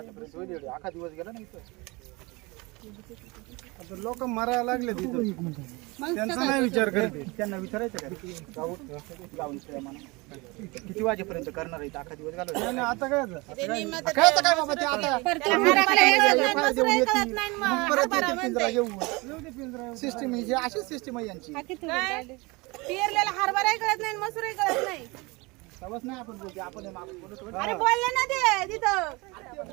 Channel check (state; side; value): quieter; left; 25.2 dB